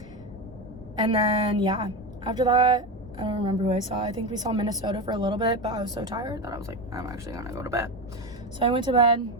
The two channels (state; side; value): normal; both; correlation 0.18